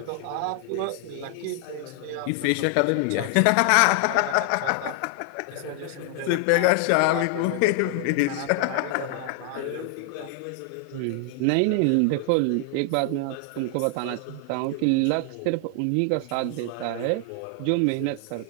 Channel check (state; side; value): different; both; correlation 0.00